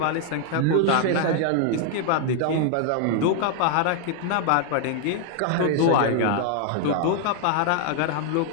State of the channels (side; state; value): both; different; correlation 0.00